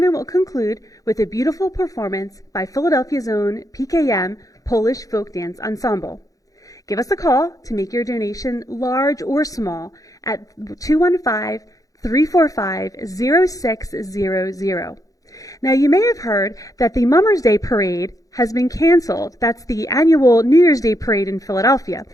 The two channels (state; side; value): late; right; 0.17 ms